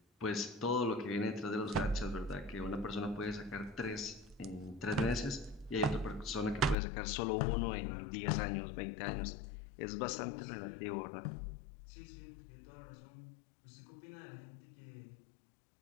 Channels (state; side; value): drops out; right; at 6.8 s